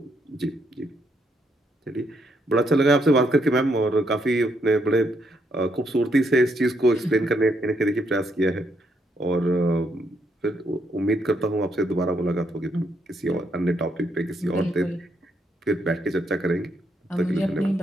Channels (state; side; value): normal; both; correlation 0.75